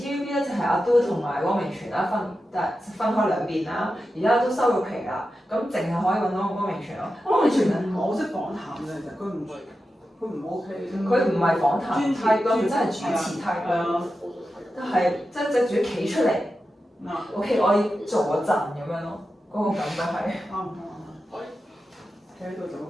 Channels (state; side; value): normal; both; correlation 0.91